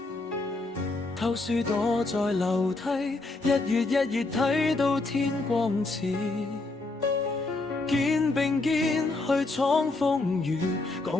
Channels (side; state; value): right; quieter; 3.2 dB